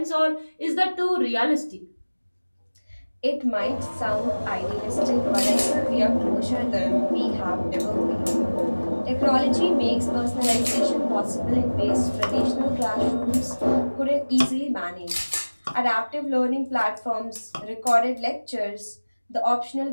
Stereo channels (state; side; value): inverted; both; correlation -1.00